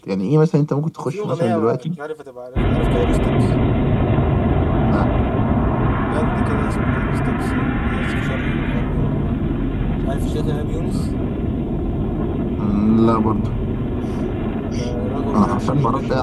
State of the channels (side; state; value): both; identical; correlation 1.00